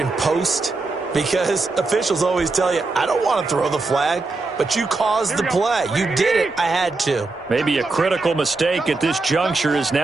post, because officials always tell you, I don't want to throw the flag, but you caused the play. You did it. I had to. Maybe a critical mistake at this juncture is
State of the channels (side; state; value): left; quieter; 3.6 dB